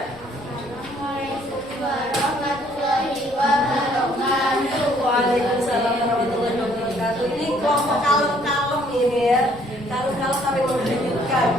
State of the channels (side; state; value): left; noise; rumble, 23 dB below the sound